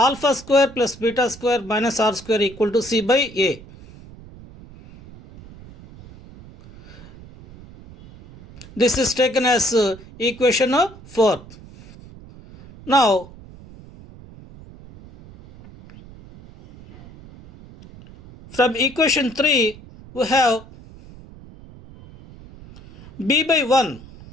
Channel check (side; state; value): right; noise; rumble, 20 dB below the sound